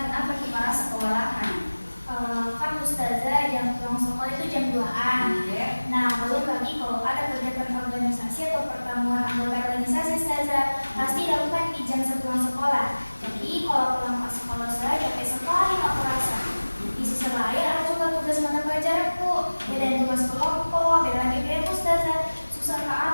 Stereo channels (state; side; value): inverted; both; correlation -1.00